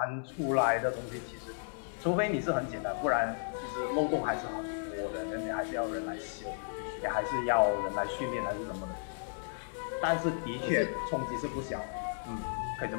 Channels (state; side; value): silent; right; 55 dB below the other